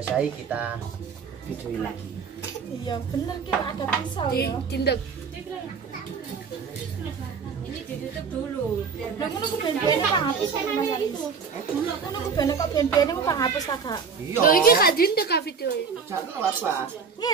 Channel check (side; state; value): left; quieter; 5.8 dB